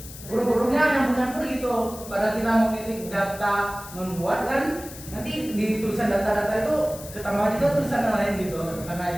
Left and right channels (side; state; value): left; noise; hiss, 15 dB below the sound